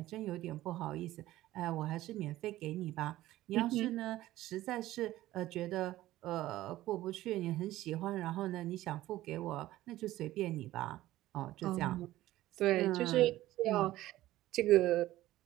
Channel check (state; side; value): quieter; left; 15.6 dB